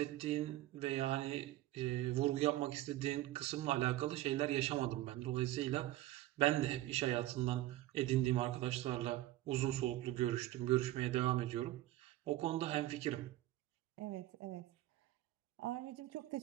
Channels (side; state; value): left; quieter; 15.6 dB